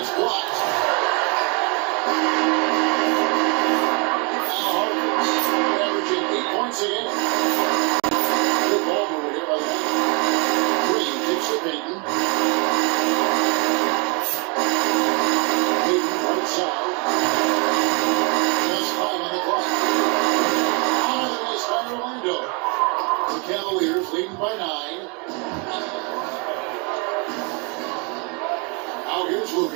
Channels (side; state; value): left; quieter; 33.0 dB